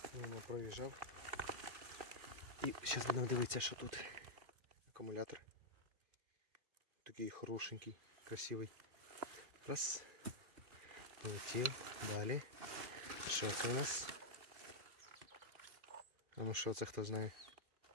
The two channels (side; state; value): left; late; 2.4 ms